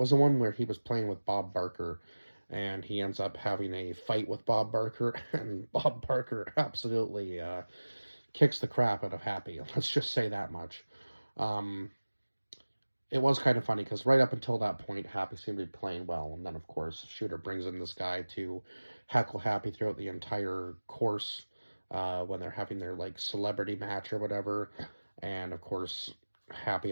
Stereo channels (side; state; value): both; inverted; correlation -1.00